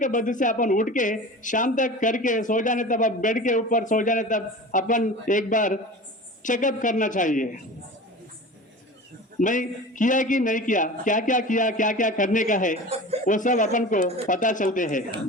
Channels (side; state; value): both; normal; correlation 0.35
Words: बद्ध से अपन उठ के शाम तक करके सो जाने तब, अब बेड के ऊपर सो जाने तब अपन एक बार चेकअप करना चाहिए, मैं किया कि नहीं किया, क्या क्या करने का है, वो सब अपन को पता चलते हैं।